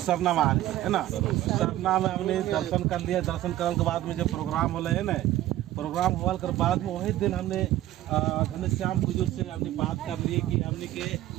सरना महाल है ना। सरना में हमने दर्शन कर लिया। दर्शन करने के बाद में जब प्रोग्राम हो है ना, प्रोग्राम होने के बाद में वही दिन हमने घनश्याम बुजुर्ग से हमने बात कर ली कि हमने के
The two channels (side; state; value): left; quieter; 14.3 dB